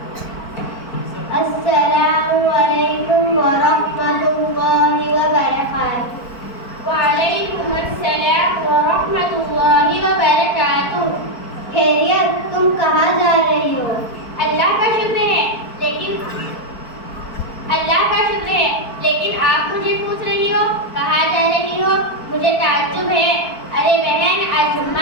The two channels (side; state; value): right; late; 4.5 ms